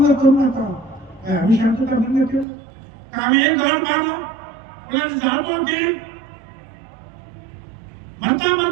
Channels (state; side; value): drops out; left; at 2.5 s